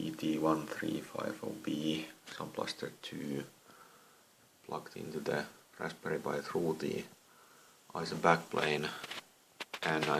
Sound Blaster 2, plugged into the Raspberry Pi through the ISA backplane, and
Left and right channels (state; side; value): identical; both; correlation 1.00